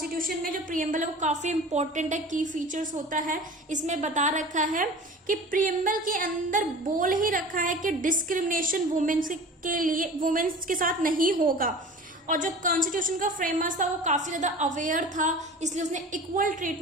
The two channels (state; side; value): normal; both; correlation 0.39